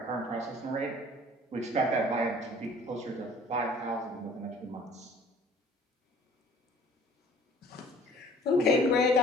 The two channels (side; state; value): both; normal; correlation 0.51